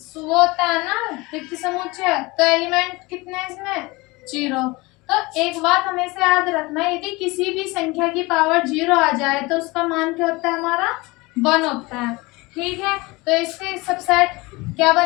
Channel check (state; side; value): quieter; right; 23.4 dB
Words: तो वो होता है ना रिक्त समुच्चय, तो एलिमेंट कितने हैं इसमें 0। तो एक बात हमेशा याद रखना है, यदि किसी भी संख्या की पावर 0 आ जाए तो उसका मान क्या होता है हमारा 1 होता है, ठीक है, तो इसके सबसेट क्या